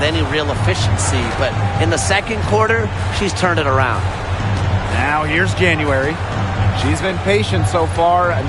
any real efficiency, but in the second quarter, she's turned it around. Now here's January. She's been patient so far.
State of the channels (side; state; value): both; identical; correlation 1.00